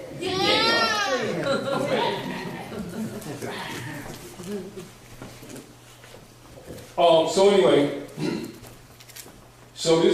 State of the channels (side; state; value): both; identical; correlation 1.00